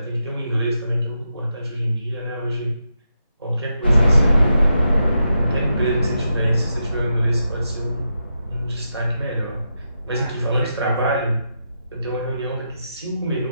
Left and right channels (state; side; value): inverted; both; correlation -0.85